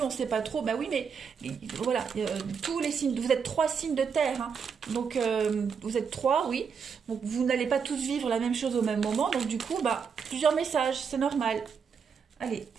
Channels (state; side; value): quieter; left; 6.3 dB